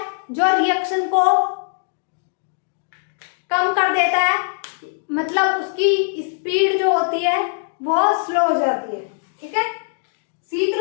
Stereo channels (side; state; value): right; silent; digital silence